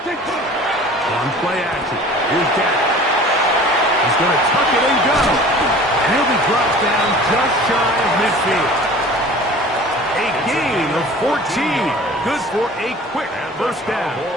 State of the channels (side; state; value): both; normal; correlation 0.44